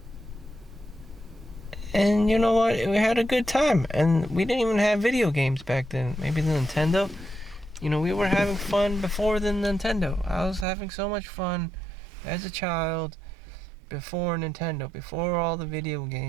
And you know what? We had a good time. And we didn't even have video games back then. Maybe the Nintendo. We were having fun before the Nintendo. I was having so much fun as a child before Nintendo, before all the video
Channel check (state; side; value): drops out; left; at 10.7 s